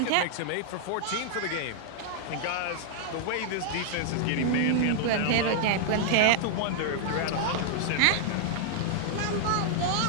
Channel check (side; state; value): both; different; correlation -0.01